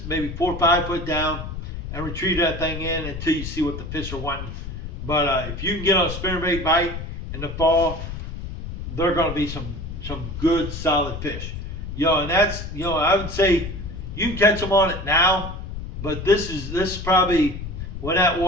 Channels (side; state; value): left; noise; rumble, 7 dB below the sound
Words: maybe 4 or 5 foot down, and retrieve that thing in until you see what the fish are wanting. But if you can get on a spinnerbait bite in the fall, they're going to be some good solid fish. And that's I would say you can catch them on it now, but this is probably when that